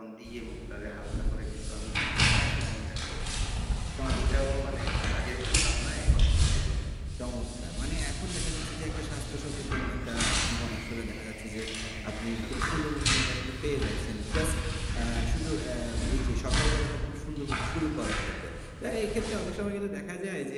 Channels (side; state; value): both; identical; correlation 1.00